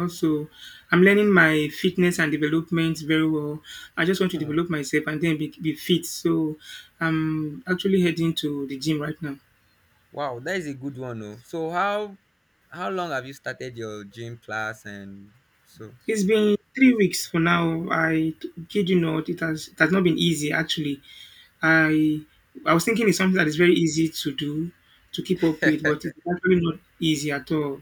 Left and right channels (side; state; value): both; identical; correlation 1.00